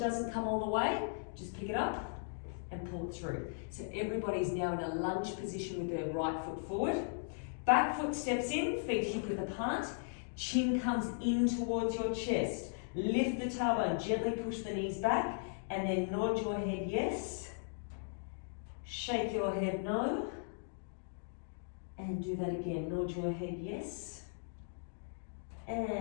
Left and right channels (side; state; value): right; silent; digital silence